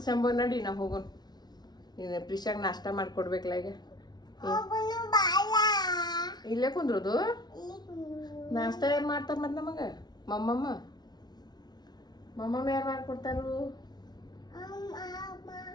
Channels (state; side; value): late; right; 0.19 ms